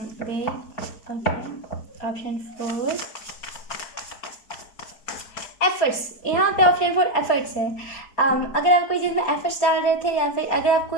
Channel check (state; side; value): late; right; 4.6 ms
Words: Wait, okay, option 4 efforts. यहाँ पे ऑप्शन 4 एफर्ट्स है। अगर आप कोई चीज़ में एफर्ट्स डाल रहे थे, या फिर अगर आप